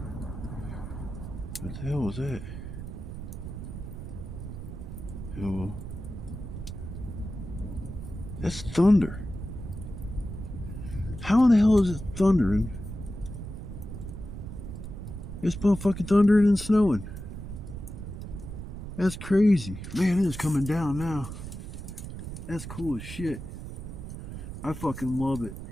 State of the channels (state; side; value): noise; right; rumble, 9 dB below the sound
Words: the hell was that? Oh, that's thunder. How in the hell is it thundering? It's motherfucking thundering and snowing. That's crazy. Man, it is coming down now. That's cool as shit. I fucking love it.